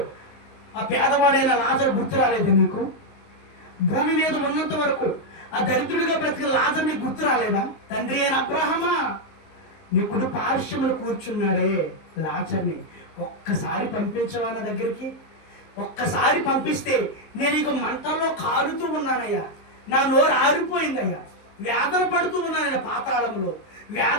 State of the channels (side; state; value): right; late; 19 ms